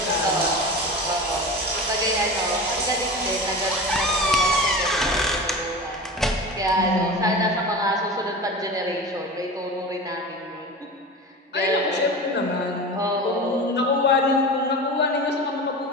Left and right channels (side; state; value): both; normal; correlation 0.30